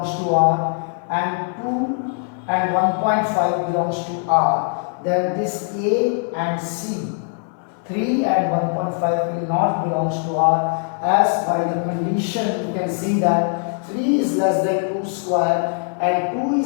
to R and 2 and 1.5 belongs to R, then this A and C, 3 and 1.5 will not belong to R, as by the condition you can see that 3 is less than 2 square and 2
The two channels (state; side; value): silent; right; 56 dB below the other